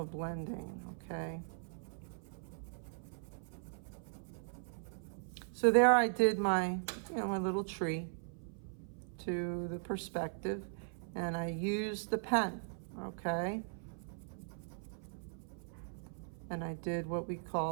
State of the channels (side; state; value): left; silent; 52 dB below the other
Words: blending. Okay. So there I did my, my little tree to the perspective, and I used the pen, okay? And I did what we